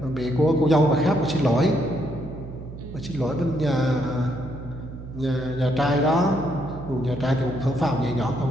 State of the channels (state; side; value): noise; right; hum, 12 dB below the sound